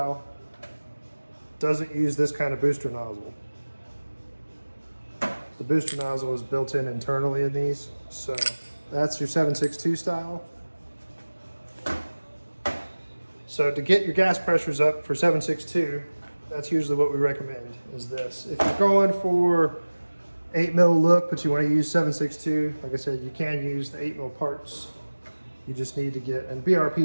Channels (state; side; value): inverted; both; correlation -1.00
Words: doesn't use this kind of booster nozzle. The booster nozzle is built in internally in these. So that's your 7.62 style. So to get your gas pressures up for 7.62, that's usually what we recommend, is this. If you're going for 8 mil look, but you want to use 7.62, like I said, you can use the 8 mil parts. You just need to get, and